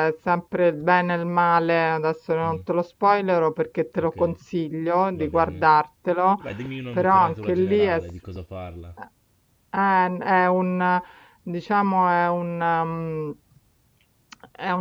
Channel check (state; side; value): identical; both; correlation 1.00